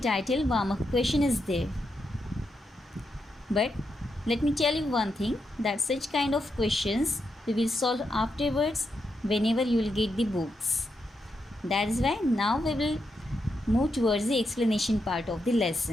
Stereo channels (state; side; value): normal; both; correlation 0.83